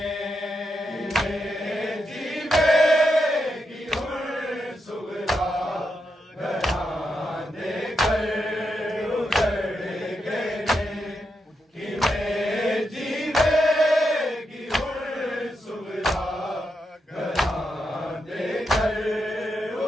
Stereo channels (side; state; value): both; normal; correlation 0.84